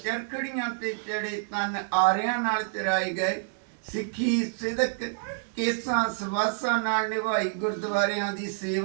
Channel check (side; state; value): left; silent; 59 dB below the other